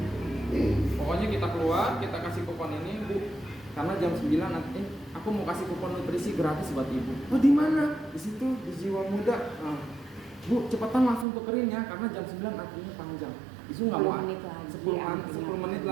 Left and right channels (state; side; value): drops out; left; at 11.2 s